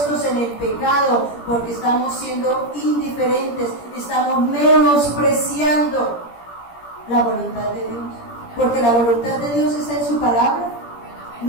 en el pecado, porque estamos siendo indiferentes, estamos menospreciando la voluntad de Dios. Porque la voluntad de Dios está en su palabra,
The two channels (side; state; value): right; late; 17 ms